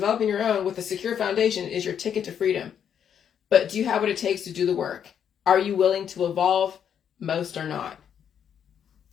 your own with a secure foundation is your ticket to freedom. But do you have what it takes to do the work? Are you willing to evolve? Most are not.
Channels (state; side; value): quieter; right; 8.5 dB